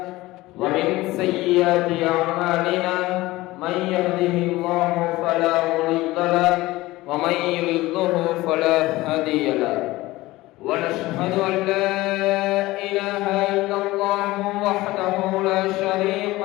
ومن سيئات أعمالنا من يهده الله فلا مضل له ومن يضلل فلا هادي له ونشهد أن لا إله إلا الله وحده لا شريك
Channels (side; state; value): right; quieter; 18.7 dB